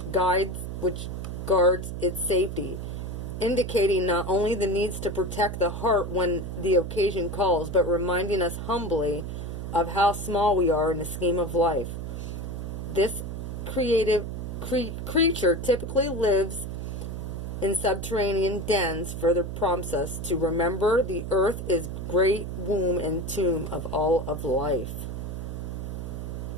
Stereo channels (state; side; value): noise; right; hum, 6 dB below the sound